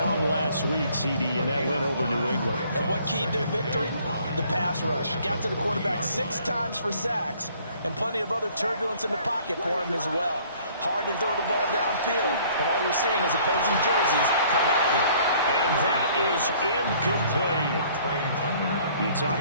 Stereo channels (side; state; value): both; inverted; correlation -0.58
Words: last week, CD, and that went over New England. And what keyed their victory? The pass rush. Got to the quarterback 6 times for sacks, and plenty of other turbulence in the pocket for him as well. Hard to throw the ball downfield, but all you're seeing is opposing jerseys come at you. And that is incomplete. You